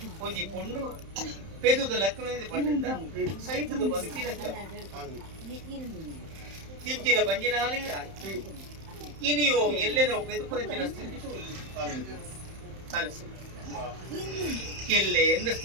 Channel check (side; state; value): left; late; 31 ms